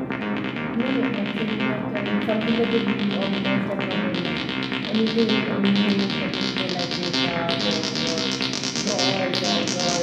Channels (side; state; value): both; identical; correlation 1.00